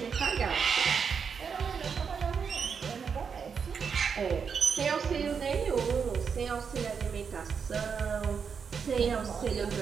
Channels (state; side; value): quieter; left; 6.3 dB